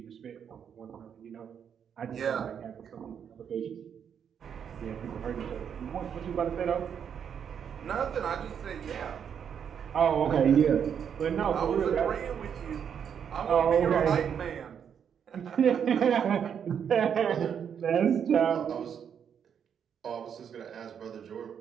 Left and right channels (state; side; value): quieter; left; 7.9 dB